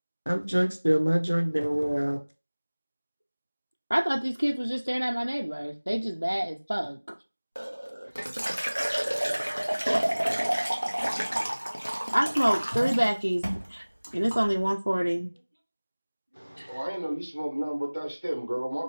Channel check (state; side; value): inverted; both; correlation -1.00